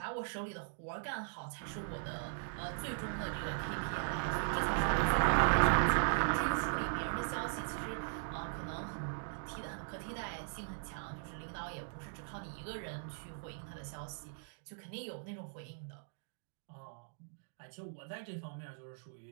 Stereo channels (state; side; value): silent; left; digital silence